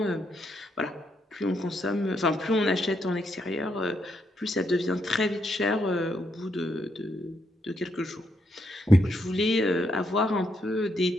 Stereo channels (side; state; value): both; normal; correlation 0.77